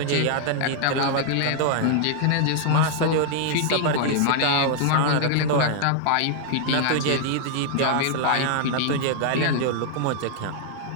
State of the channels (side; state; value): both; different; correlation 0.00